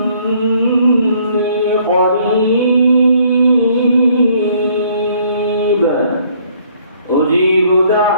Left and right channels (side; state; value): both; inverted; correlation -0.63